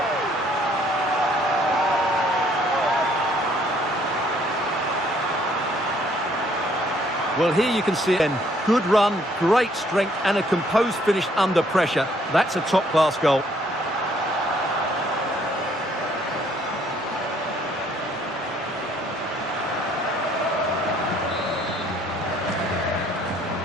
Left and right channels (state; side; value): normal; both; correlation 0.64